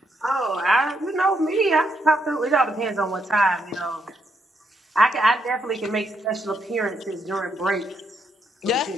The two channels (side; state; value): both; normal; correlation 0.76